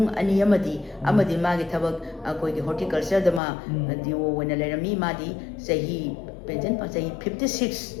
ani amadi ma gi thabak koi gi horticulture da ma diwo wena lerami ma di sahi pension pa sahi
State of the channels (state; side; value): drops out; right; at 3.4 s